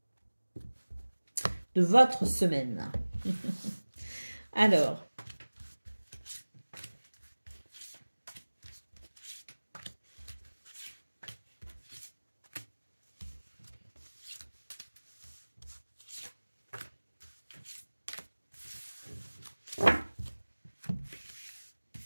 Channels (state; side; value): inverted; both; correlation -1.00